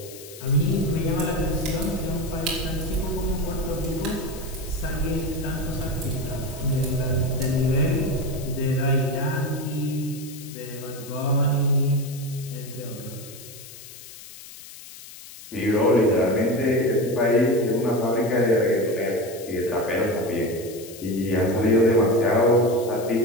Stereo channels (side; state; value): left; noise; hiss, 16 dB below the sound